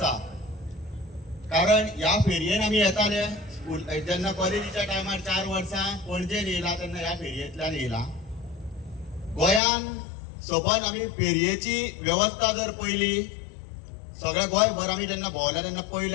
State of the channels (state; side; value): drops out; right; at 9.6 s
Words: कारण ह्या फेरयेन आमी येताले स्कूल जेन्ना कॉलेजीच्या टायमार 4 वर्सां पणजेन येयला तेन्ना ह्या फेरयेंतल्यान येयला। गोंयान सबन आमी फेरयेची वेवस्था जर पयली सगळे गोंयभर आमी जेन्ना भोंवल्या तेन्ना